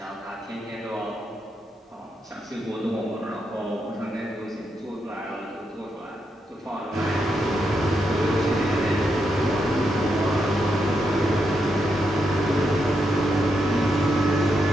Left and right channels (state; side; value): normal; both; correlation 0.82